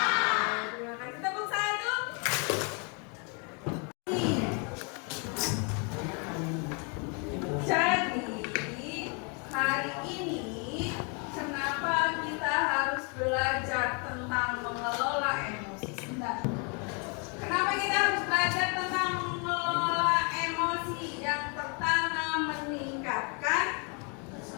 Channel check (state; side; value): quieter; right; 35.1 dB